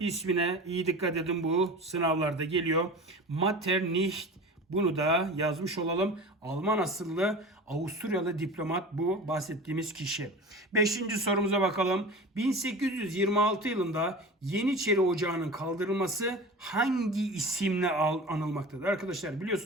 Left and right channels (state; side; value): normal; both; correlation 0.34